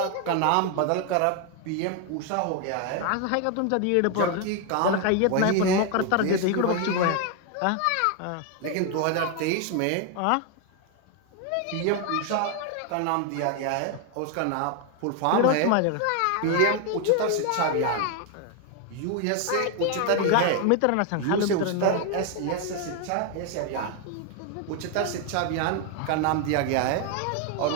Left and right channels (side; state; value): both; different; correlation 0.01